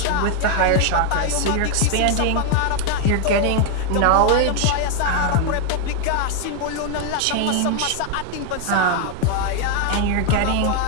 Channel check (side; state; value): both; different; correlation 0.01